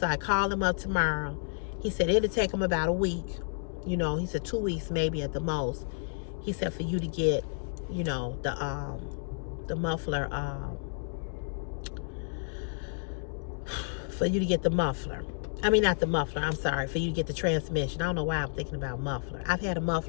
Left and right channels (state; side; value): silent; right; digital silence